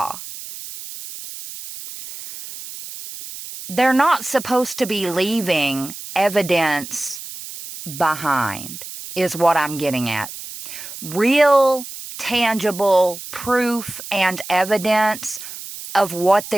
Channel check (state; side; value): noise; right; hiss, 12 dB below the sound